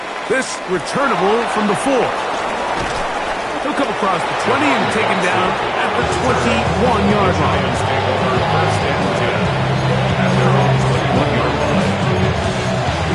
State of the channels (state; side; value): identical; both; correlation 1.00